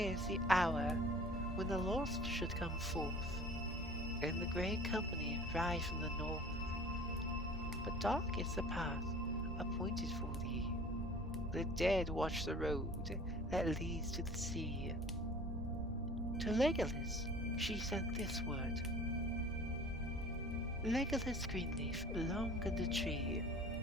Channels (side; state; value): both; normal; correlation 0.46